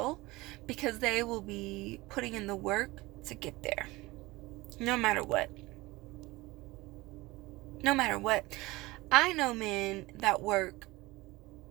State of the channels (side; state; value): left; quieter; 21.0 dB